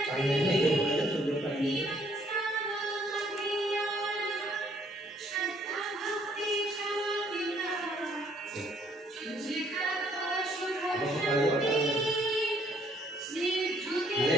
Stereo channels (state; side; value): normal; both; correlation 0.65